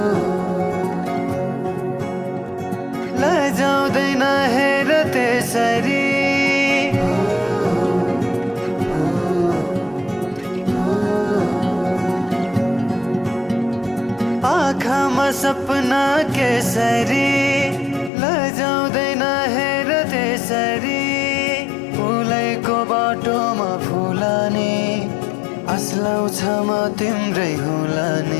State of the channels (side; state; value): right; drops out; at 18.1 s